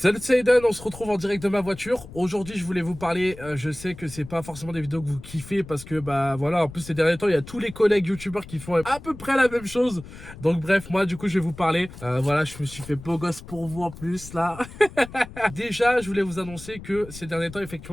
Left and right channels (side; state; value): left; noise; rumble, 16 dB below the sound